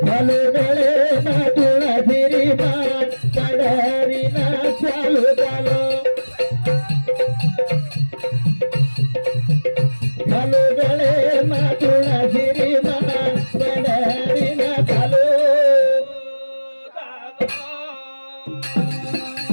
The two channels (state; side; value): inverted; both; correlation -1.00